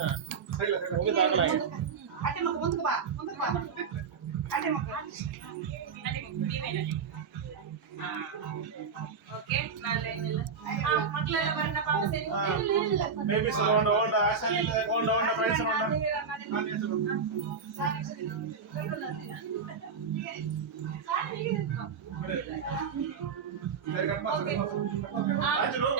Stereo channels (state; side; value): quieter; left; 5.7 dB